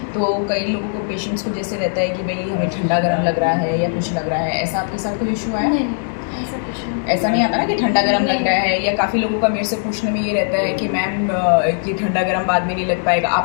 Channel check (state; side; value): silent; right; digital silence